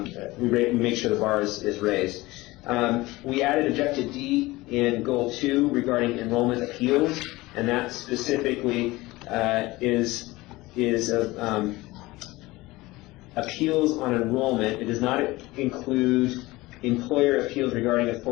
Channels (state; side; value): quieter; right; 20.1 dB